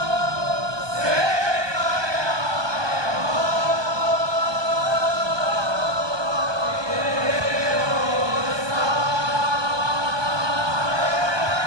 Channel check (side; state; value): left; late; 1.2 ms